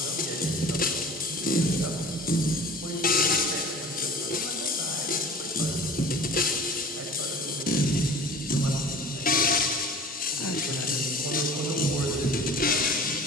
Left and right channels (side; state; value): both; normal; correlation 0.42